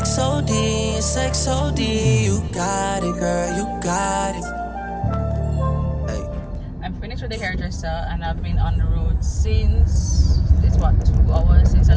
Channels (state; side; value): identical; both; correlation 1.00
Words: OD and sex OD. You got it, girl, you got it. Hey. I'm finished with the hairdresser and I've been on the road since, it's what, 2 hours since I